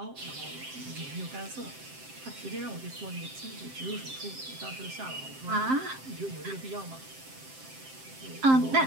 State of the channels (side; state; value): left; late; 7.6 ms